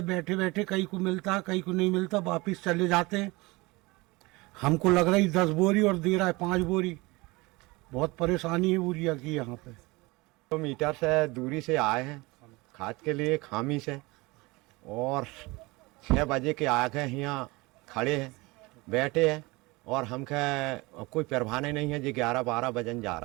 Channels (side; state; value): left; quieter; 23.6 dB